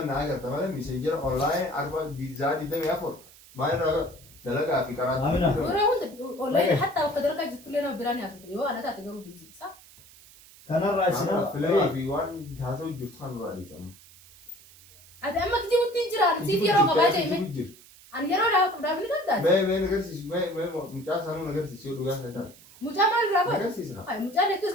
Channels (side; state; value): right; noise; hiss, 23 dB below the sound